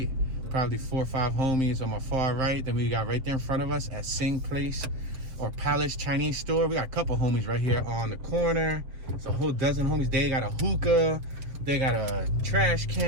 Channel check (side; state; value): left; late; 7.5 ms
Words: probably 4 or 5 homies on my far right. Then we got right there in front of us at Sing Place or Palace Chinese store. We got a couple homies right here on the corner. It's a whole dozen homies. They got a hookah. They got a trash